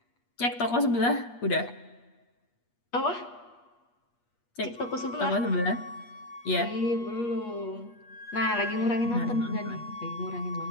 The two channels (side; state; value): right; late; 8.4 ms